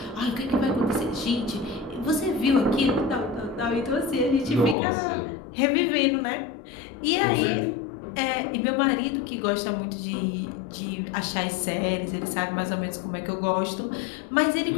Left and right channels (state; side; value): drops out; right; at 4.8 s